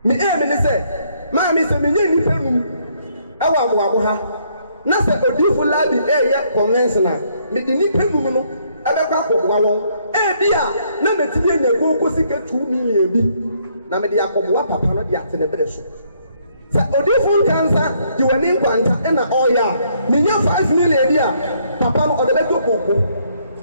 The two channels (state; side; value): inverted; both; correlation -0.69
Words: Me say, Mammy, some million our Wabuha. Nasa odifu labi ya conventional. Me di ni penu no abekwa akobwa won. Bia na metibi enyago kosika 2 million bi. Na me di akobwa papa no di atene bere so. Sa odifu kansa di wani nkwanta na oya. Me nya 5 million dia. Papa no odebeto koko.